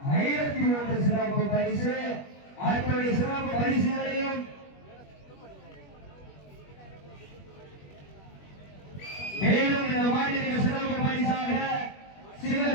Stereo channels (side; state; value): right; late; 21 ms